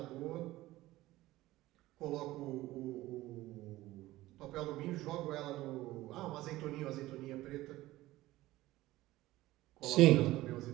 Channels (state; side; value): quieter; left; 17.1 dB